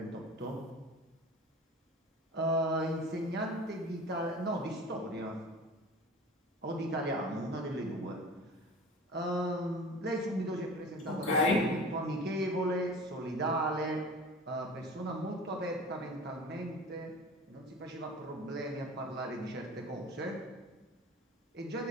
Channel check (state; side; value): normal; both; correlation 0.39